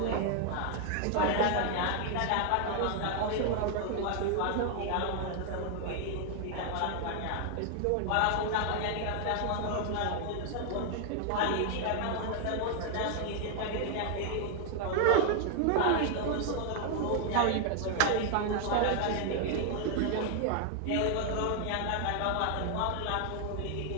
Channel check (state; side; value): different; both; correlation 0.00